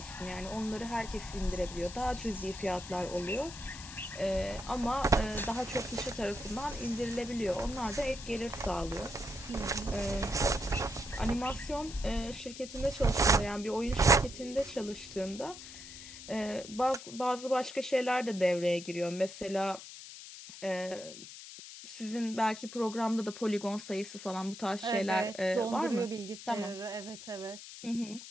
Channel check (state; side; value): noise; left; hiss, 13 dB below the sound